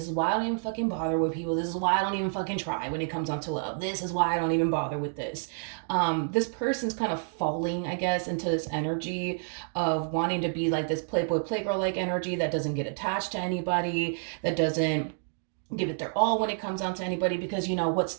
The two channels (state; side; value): silent; left; digital silence